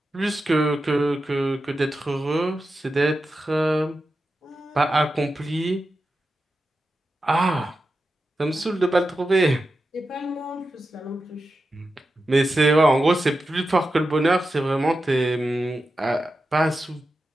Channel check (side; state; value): both; normal; correlation 0.90